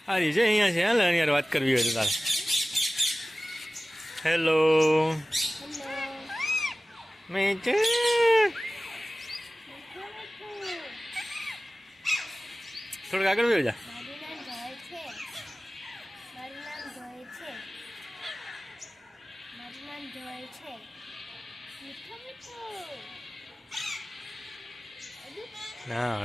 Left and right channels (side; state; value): both; normal; correlation 0.97